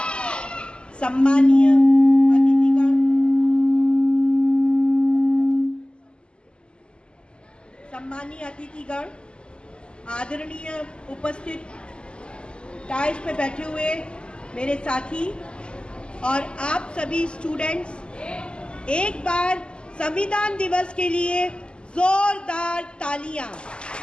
सम्मानीय अतिथिगण, आदरणीय उपस्थित डाइस पे बैठे हुए मेरे साथी और आप सभी स्टूडेंट्स, एक बार संविधान दिवस के लिए जोरदार तालियां।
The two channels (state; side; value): late; right; 0.052 ms